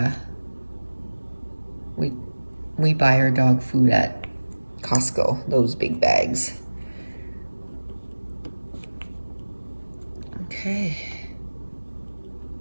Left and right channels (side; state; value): both; inverted; correlation -1.00